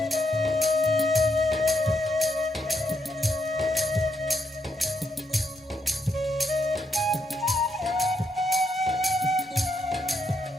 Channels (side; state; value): both; normal; correlation 0.78